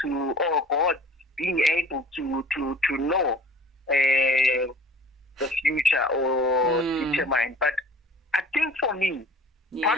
to, or God being able to know the future or determine. But I think for me, part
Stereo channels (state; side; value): normal; both; correlation 0.47